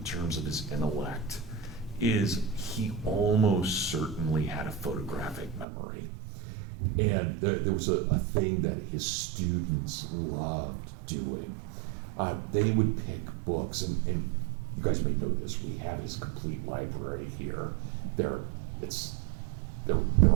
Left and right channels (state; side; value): drops out; left; at 5.7 s